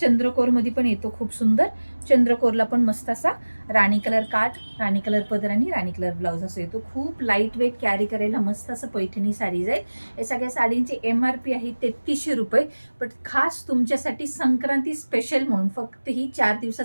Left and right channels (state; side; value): inverted; both; correlation -1.00